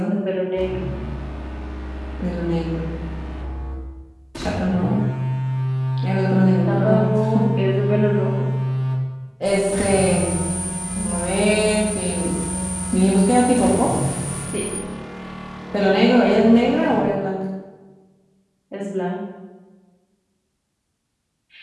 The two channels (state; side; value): identical; both; correlation 1.00